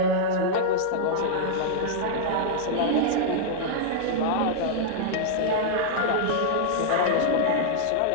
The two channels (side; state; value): both; different; correlation -0.02